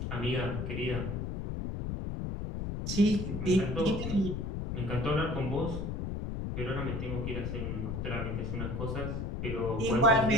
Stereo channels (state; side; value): noise; left; rumble, 3 dB below the sound